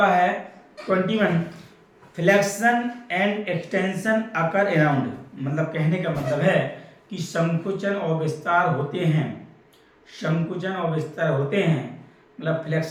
है 21, flexion and extension occur around, मतलब कहने का मतलब है कि संकुचन और विस्तार होते हैं, संकुचन और विस्तार होते हैं, मतलब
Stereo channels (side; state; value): both; identical; correlation 1.00